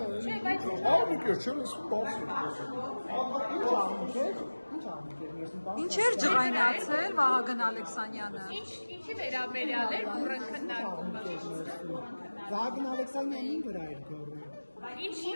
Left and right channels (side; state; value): both; inverted; correlation -1.00